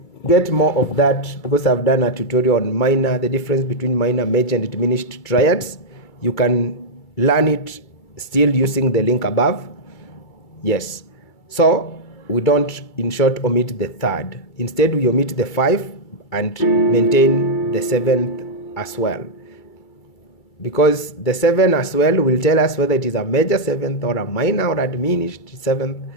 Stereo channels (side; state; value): right; late; 2.3 ms